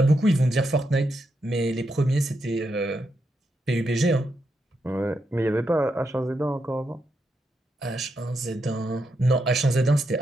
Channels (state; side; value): normal; both; correlation 0.83